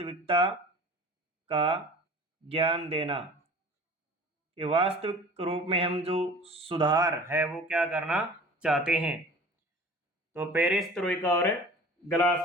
का ज्ञान देना। कि वास्तविक रूप में हम जो सुधार है वो क्या करना चाहते हैं। तो पेरेस्ट्रोइका और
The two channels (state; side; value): normal; both; correlation 0.42